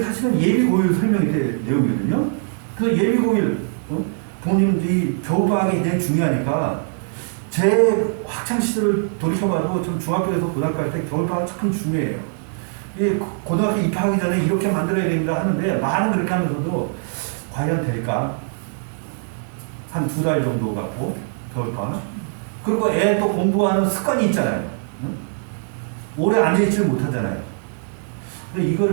사실은 예비고일 설명이 된 내용이거든요. 그 예비고일, 부모님들이 겨울방학이 굉장히 중요하니까 제 학창시절을 돌이켜봐도 전 중학교에서 고등학교 할 때 겨울방학 참 중요해요. 고등학교 입학하기 전에 이렇게 만들어야 됩니다 하는데 말은 그렇게 하면서도 과연 될까? 한 2달 정도 갖고 겨울방학. 그리고 애 또 공부하는 습관이 있잖아요. 응? 오래 앉아있지를 못하잖아요. 근데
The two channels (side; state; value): left; silent; digital silence